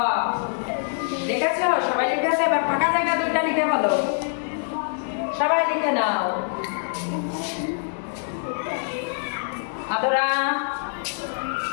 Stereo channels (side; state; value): right; silent; digital silence